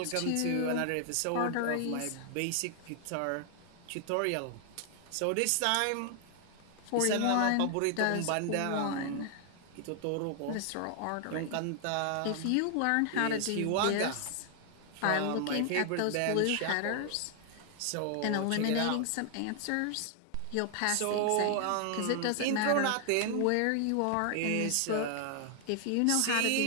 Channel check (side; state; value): both; different; correlation 0.00